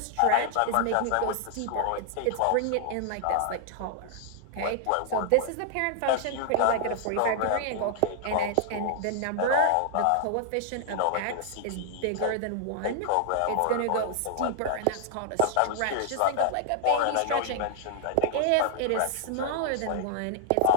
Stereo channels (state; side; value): different; both; correlation -0.01